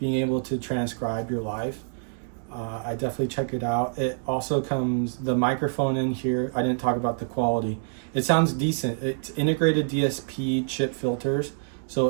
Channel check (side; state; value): left; silent; digital silence